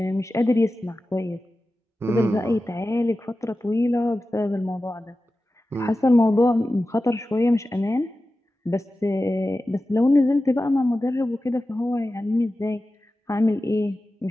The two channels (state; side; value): normal; both; correlation 0.94